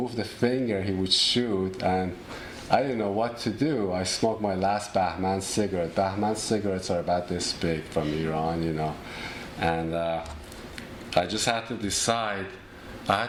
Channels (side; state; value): both; identical; correlation 1.00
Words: a finger, he would shoot, and I didn't know what to do. I smoked my last Bahman cigarette. Bahman cigarettes are about this big from Iran, you know. And I just had to decide I